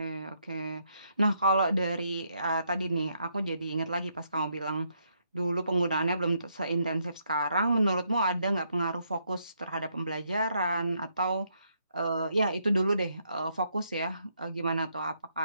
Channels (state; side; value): inverted; both; correlation -0.75